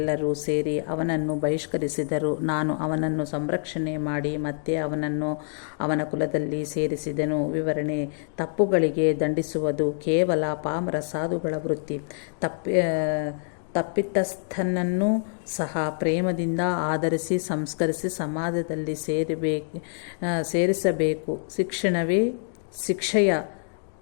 ಸೇರಿ ಅವನನ್ನು ಬಹಿಷ್ಕರಿಸಿದರು. ನಾನು ಅವನನ್ನು ಸಂರಕ್ಷಣೆ ಮಾಡಿ ಮತ್ತೆ ಅವನನ್ನು ಅವನ ಕುಲದಲ್ಲಿ ಸೇರಿಸಿದೆನು. ವಿವರಣೆ: ತಪ್ಪುಗಳಿಗೆ ದಂಡಿಸುವುದು ಕೇವಲ ಪಾಮರ ಸಾಧುಗಳ ವೃತ್ತಿ. ತಪ್ಪಿತಸ್ಥನನ್ನು ಸಹ ಪ್ರೇಮದಿಂದ ಆದರಿಸಿ ಸಂಸ್ಕರಿಸಿ ಸಮಾಜದಲ್ಲಿ ಸೇರಿಸಬೇಕು. ಶಿಕ್ಷಣವೇ ಶಿಕ್ಷೆಯ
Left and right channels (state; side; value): silent; right; digital silence